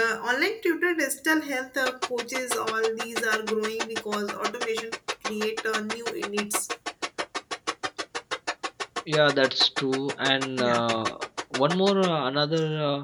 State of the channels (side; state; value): both; identical; correlation 1.00